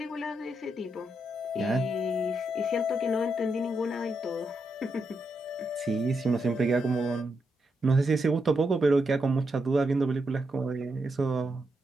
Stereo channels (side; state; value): both; normal; correlation 0.82